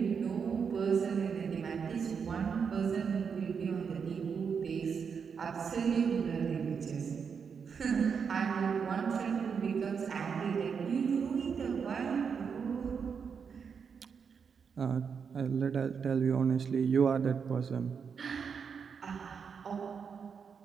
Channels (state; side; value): quieter; left; 6.3 dB